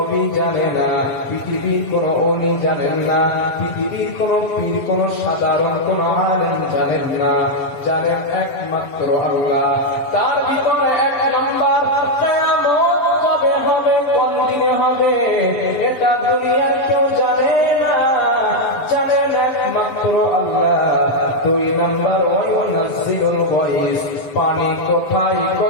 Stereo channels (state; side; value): late; right; 7.3 ms